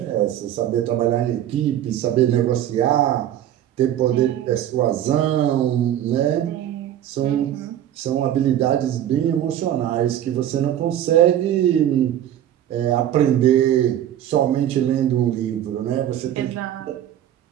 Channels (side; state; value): left; quieter; 11.4 dB